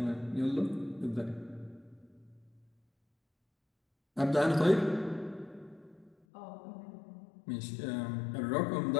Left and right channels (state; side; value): drops out; right; at 6.2 s